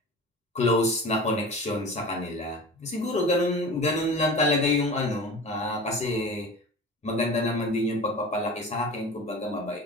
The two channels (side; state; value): both; normal; correlation 0.36